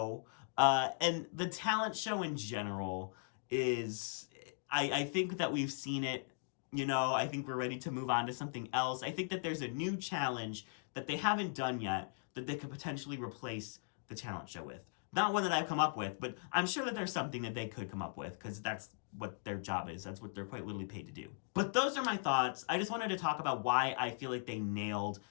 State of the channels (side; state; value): right; silent; digital silence